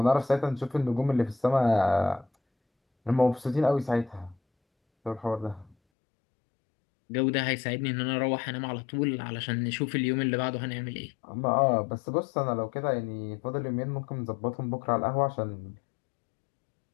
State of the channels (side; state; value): right; drops out; at 5.8 s